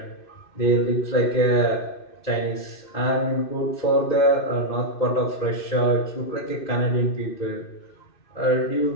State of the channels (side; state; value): right; late; 2.6 ms